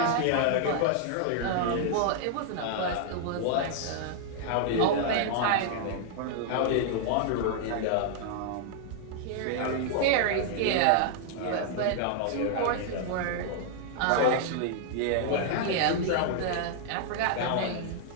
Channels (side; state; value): both; different; correlation -0.01